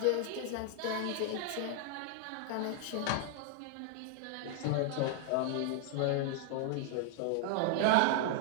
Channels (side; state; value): both; different; correlation 0.00